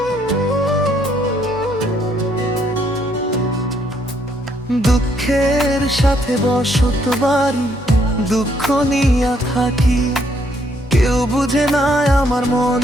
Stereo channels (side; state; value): both; normal; correlation 0.70